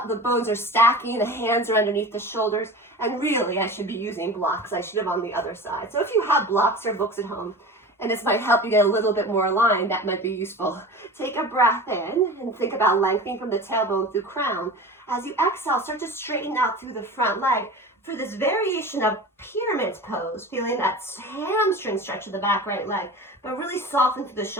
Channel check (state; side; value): normal; both; correlation 0.34